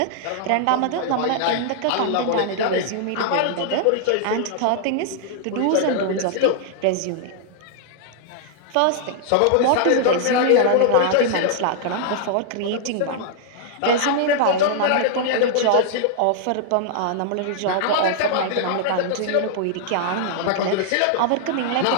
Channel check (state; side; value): different; both; correlation -0.01